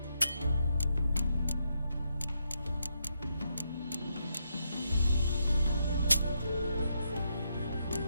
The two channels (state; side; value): inverted; both; correlation -0.80